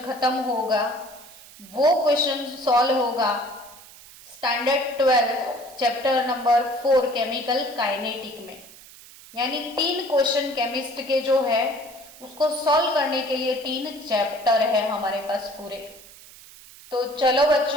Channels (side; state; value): right; noise; hiss, 20 dB below the sound